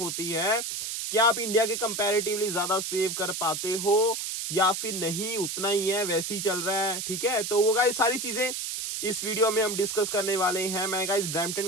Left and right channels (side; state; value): right; noise; hiss, 4 dB below the sound